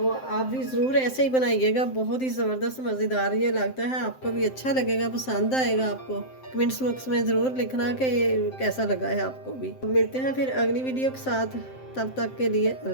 आप भी ज़रूर ऐसे ही बनाइएगा, बहुत ही ज़बरदस्त मज़ेदार ये लगता है, आपको भी अच्छा लगेगा, पसंद आएगा आपको। कमेंट्स बॉक्स में ज़रूर लिखना कि ये कैसा लगा है आपको भी। मिलते हैं फिर अगली वीडियो के साथ, तब तक के लिए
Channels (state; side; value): late; right; 7.7 ms